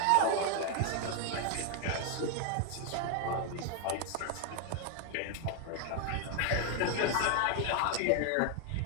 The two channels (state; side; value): different; both; correlation 0.00